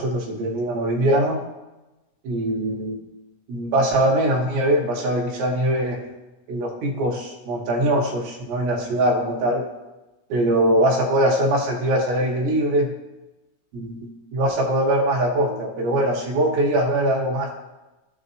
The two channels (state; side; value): late; left; 17 ms